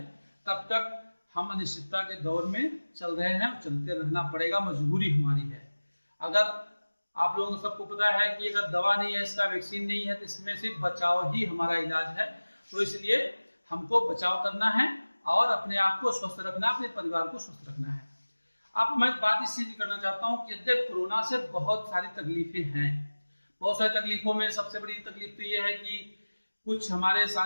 तब तक हम अनिश्चितता के दौर में चल रहे हैं और चलते रहना पड़ेगा, मजबूरी हमारी है। अगर आप लोगों को सबको पता है कि अगर दवा नहीं है, इसका वैक्सीन नहीं है, तो इसमें सिर्फ बचाव ही हमारा इलाज है। तो इसलिए हमको बचाव करना है और अपने आप को स्वस्थ रखना, अपने परिवार को स्वस्थ रखना है। अब मैं बात इस चीज करना चाहता हूँ कि कोरोना से बहुत सारी तकलीफें हैं। बहुत सारी तकलीफों में सबसे बड़ी तकलीफ तो ये है कि कुछ हमारे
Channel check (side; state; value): both; inverted; correlation -1.00